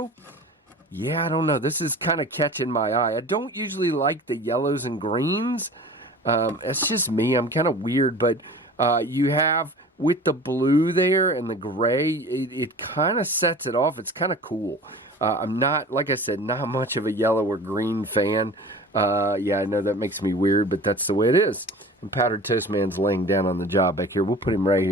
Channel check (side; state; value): both; normal; correlation 0.40